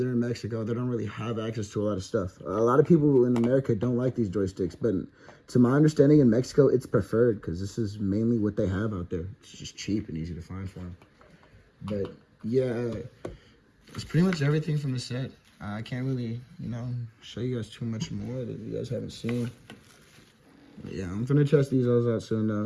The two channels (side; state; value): both; identical; correlation 1.00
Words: in Mexico. They don't really have access to a lot of stuff. A lot of people in America don't like these joysticks, but to my understanding in Mexico, it's preferred because this is mainly what they have out there. It's just cheap and easy to find for them. But yeah, it's pretty much everything from the set. I can't really, you know, show you guys too much more that you guys haven't seen. But yeah, I'm gonna test these all out soon